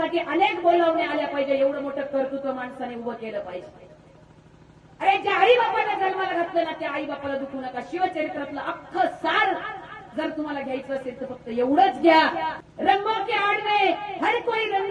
अनेक बोलावणे आल्या पाहिजे एवढं मोठं कर्तृत्व माणसाने उभं केलं पाहिजे. अरे ज्या आई बापाला जन्माला घातलं ना त्या आई बापाला दुखू नका. शिवचरित्रातलं अख्खं सार जर तुम्हाला घ्यायचं असेल तर फक्त एवढंच घ्या, रंगों के आड़ में हर कोई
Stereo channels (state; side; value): identical; both; correlation 1.00